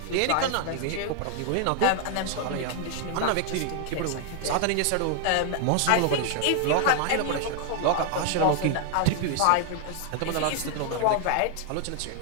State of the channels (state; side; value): different; both; correlation 0.00